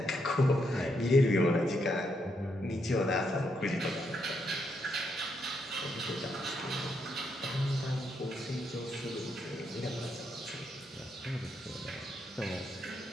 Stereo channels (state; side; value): normal; both; correlation 0.78